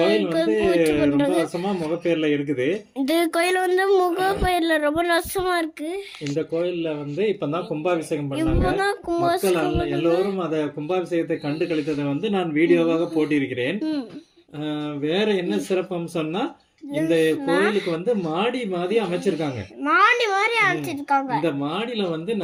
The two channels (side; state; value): both; identical; correlation 1.00